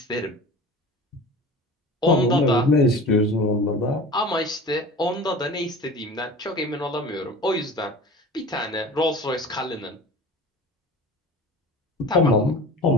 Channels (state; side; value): normal; both; correlation 0.38